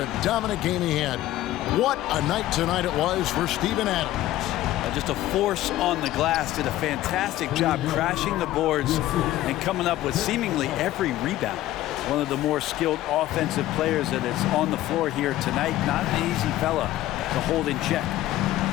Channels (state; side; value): quieter; right; 14.8 dB